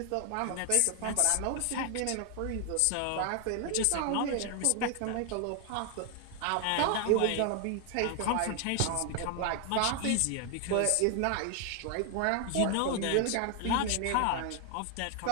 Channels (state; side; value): different; both; correlation 0.00